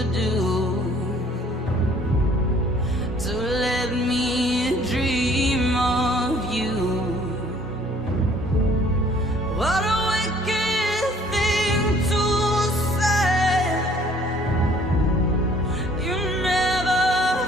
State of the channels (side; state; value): both; normal; correlation 0.57